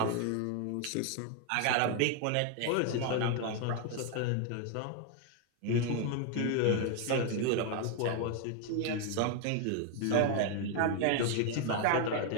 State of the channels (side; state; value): both; different; correlation 0.01